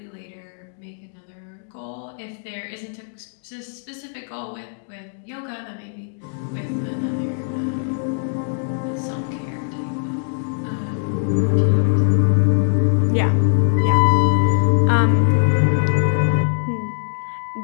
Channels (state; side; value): silent; right; digital silence